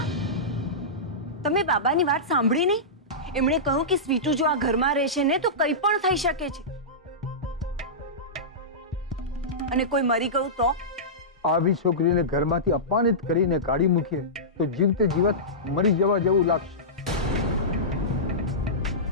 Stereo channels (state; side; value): normal; both; correlation -0.17